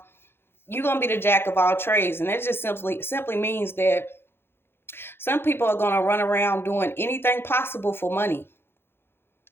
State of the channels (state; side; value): late; right; 0.11 ms